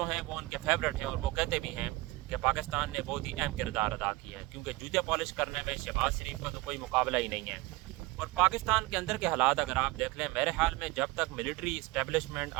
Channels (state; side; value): quieter; left; 21.1 dB